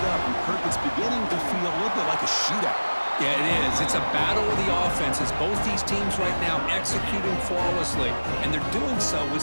up, and Kirk, it's beginning to feel a little bit like a shootout. Yeah, it is. It's a battle of the offenses. Both these teams right now executing flawlessly, and they're doing so with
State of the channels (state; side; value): inverted; both; correlation -1.00